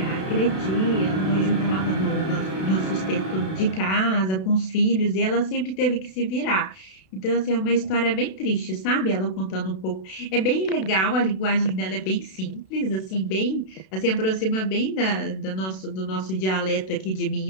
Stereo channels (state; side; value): late; right; 32 ms